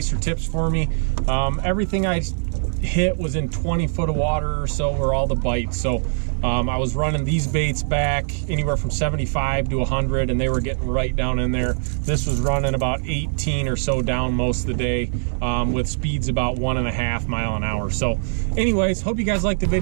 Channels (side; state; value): left; silent; 60 dB below the other